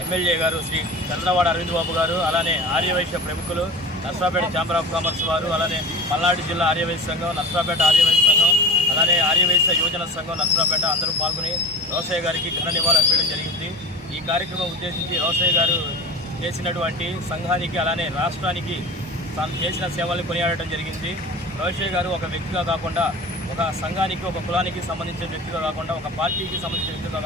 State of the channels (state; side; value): normal; both; correlation 0.35